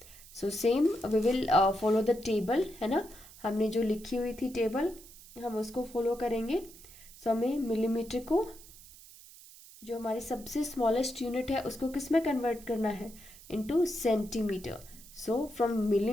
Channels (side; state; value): right; noise; hiss, 20 dB below the sound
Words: So same we will follow the table, है ना. हमने जो लिखी हुई थी टेबल, हम उसको फॉलो करेंगे. सो हमें मिलीमीटर को, जो हमारी सबसे स्मॉलेस्ट यूनिट है, उसको किस में कन्वर्ट करना है? Into centimetre. So from